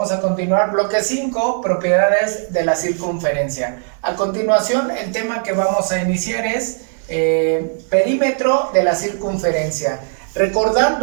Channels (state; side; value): silent; left; 57 dB below the other